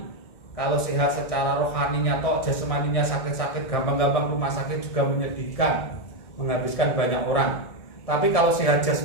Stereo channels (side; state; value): right; late; 1.6 ms